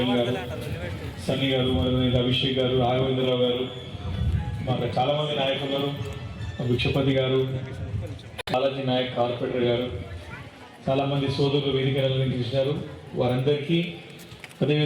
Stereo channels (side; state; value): both; identical; correlation 1.00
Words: గారు, సన్నీ గారు, అభిషేక్ గారు, రాఘవేంద్రరావు గారు, మాకు చాలామంది నాయకులు, భిక్షపతి గారు, బాలాజీ నాయక్ కార్పొరేటర్ గారు, చాలామంది సోదరులు వేదికలు అలంకరించారు. వారందరికీ,